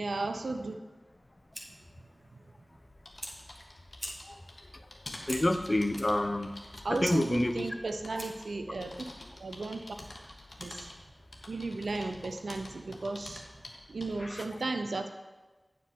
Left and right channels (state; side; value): normal; both; correlation 0.96